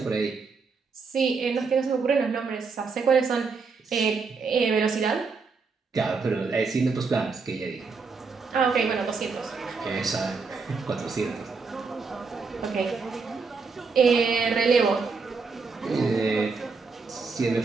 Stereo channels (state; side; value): quieter; left; 4.7 dB